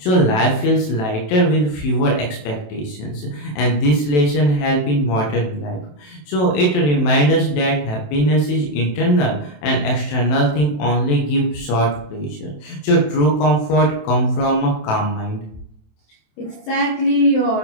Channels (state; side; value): late; right; 27 ms